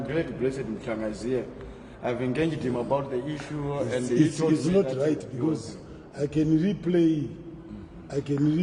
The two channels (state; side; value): identical; both; correlation 1.00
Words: glad Blessed Mchanga is here. I've engaged him about the issue, and he told it's me not that right, because I can replay